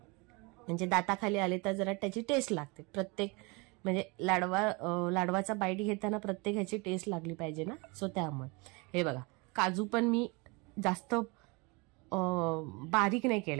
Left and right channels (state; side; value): quieter; left; 28.1 dB